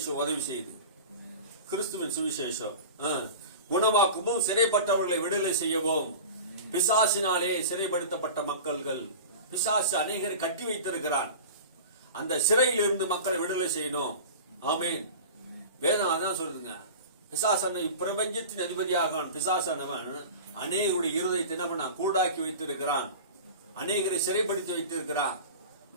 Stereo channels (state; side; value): inverted; both; correlation -0.34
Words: உதவி செய்யுது. கிறிஸ்துவின் சுவிசேஷம் குணமாக்கவும், சிறைப்பட்டவர்களை விடுதலை செய்யவும். பிசாசினாலே சிறைப்படுத்தப்பட்ட மக்கள்கள், பிசாசு அநேகரை கட்டி வைத்திருக்கிறான். அந்த சிறையில் இருந்து மக்களை விடுதலை செய்யணும். ஆமீன். வேதம் அதான் சொல்லுதுங்க. பிசாசான பிரபஞ்சத்தின் அதிபதியாக பிசாசானவன் அநேகருடைய இருதயத்தை என்ன கூடாக்கி வைத்திருக்கிறான், அநேகரை சிறைப்படுத்தி வைத்திருக்கிறான்.